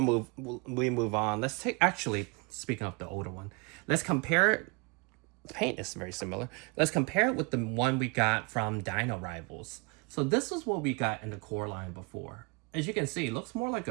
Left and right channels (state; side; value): quieter; left; 30.3 dB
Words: we move on, let's take, actually, speaking of the older one, let's compare it. The paint is very similar. Let's compare it with the one we got from Dino Rivals. So this is what we got in the core line before. As you can see, it looks more like